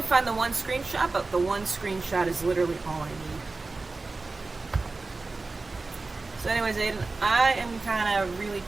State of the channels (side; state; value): left; quieter; 3.6 dB